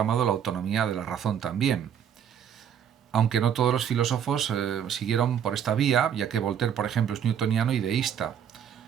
la autonomía de la razón también. Aunque no todos los filósofos siguieron por esta vía, ya que Voltaire, por ejemplo, es newtoniano y deísta.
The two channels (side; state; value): left; quieter; 8.7 dB